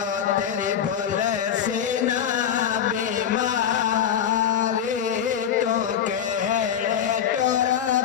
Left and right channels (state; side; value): quieter; right; 8.7 dB